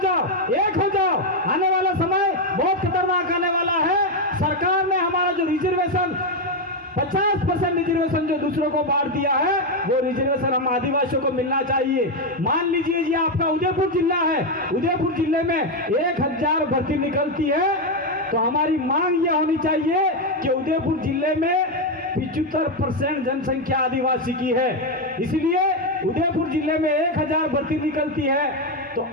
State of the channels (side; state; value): both; normal; correlation 0.06